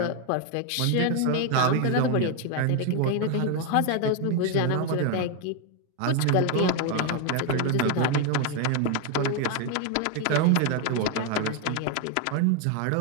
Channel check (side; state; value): both; different; correlation 0.01